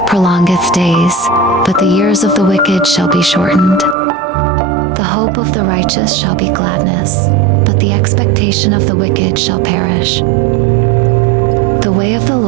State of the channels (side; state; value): left; drops out; at 4.0 s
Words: prolongeth days, but the years of the wicked shall be shortened. The hope of the righteous shall be gladness, but the expectation of the wicked shall perish. The way of the